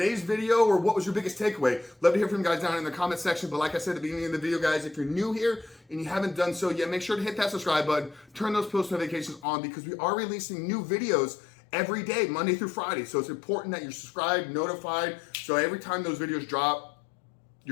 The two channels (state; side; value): drops out; right; at 9.4 s